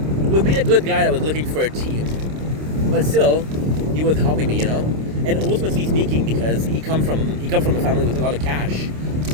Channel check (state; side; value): late; left; 26 ms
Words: being a good guy that was looking for a team, but still, he was helping me, And ultimately speaking, because he come from a family with a lot of cash.